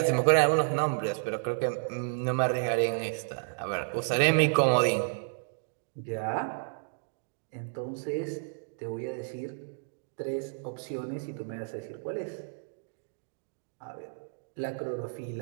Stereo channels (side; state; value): left; silent; digital silence